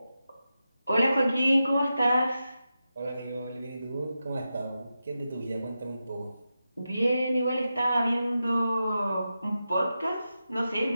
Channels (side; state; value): both; inverted; correlation -0.90